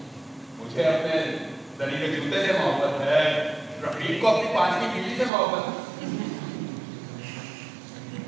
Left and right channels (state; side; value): drops out; left; at 5.3 s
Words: मुझे अपने दरी के जूते से मोहब्बत है, रफीक को अपनी 5वीं बीवी से मोहब्बत है।